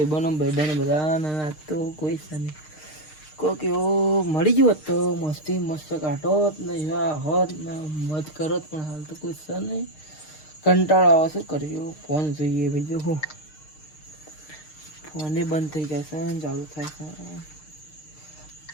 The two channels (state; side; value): late; right; 6.5 ms